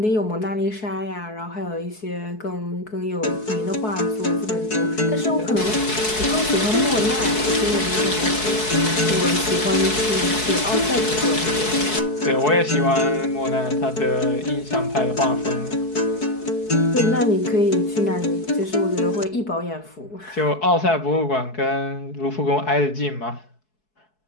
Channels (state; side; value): late; right; 4.6 ms